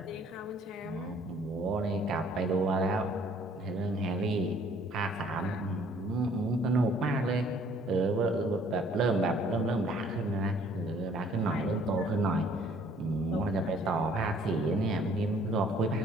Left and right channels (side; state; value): both; normal; correlation 0.58